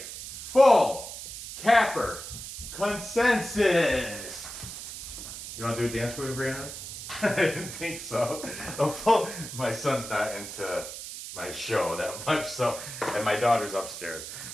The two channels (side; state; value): right; noise; hiss, 10 dB below the sound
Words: full capper consensus. You want to do a dance with me, Brandon? I didn't think so. My son's not into my show that much, so, and my daughter's upstairs.